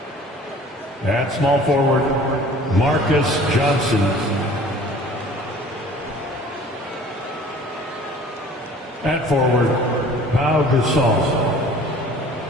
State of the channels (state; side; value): normal; both; correlation 0.48